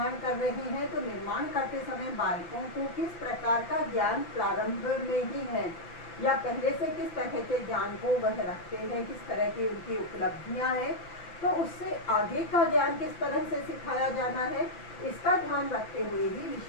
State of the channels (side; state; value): right; late; 5.9 ms